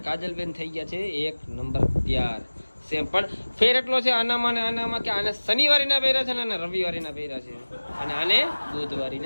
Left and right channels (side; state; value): both; inverted; correlation -1.00